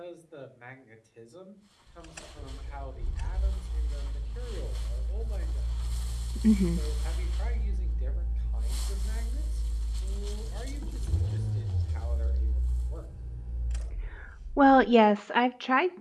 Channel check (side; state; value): both; identical; correlation 1.00